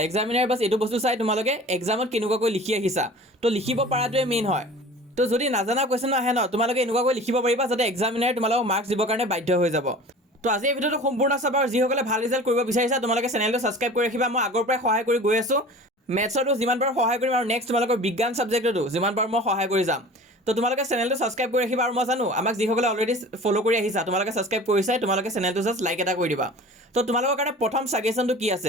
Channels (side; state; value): both; normal; correlation 0.41